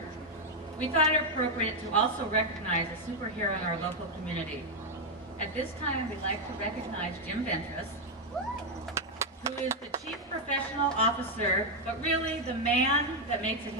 we thought it appropriate to also recognize a superhero in our local community. At this time, we'd like to recognize Jim Ventress, who is the Chief Professional Officer, but really the man that makes it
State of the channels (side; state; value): both; normal; correlation 0.01